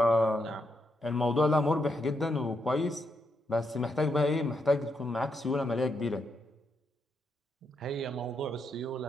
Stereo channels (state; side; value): normal; both; correlation 0.80